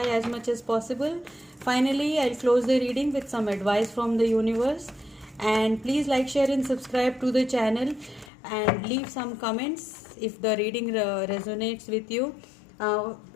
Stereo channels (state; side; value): drops out; right; at 8.3 s